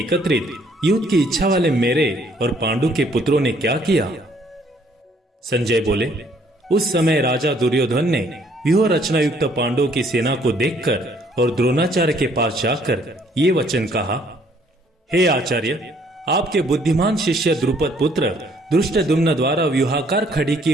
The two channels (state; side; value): normal; both; correlation 0.64